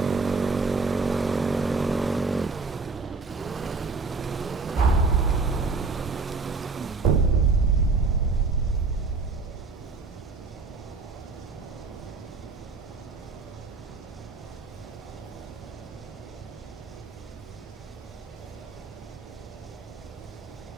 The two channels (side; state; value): left; quieter; 4.2 dB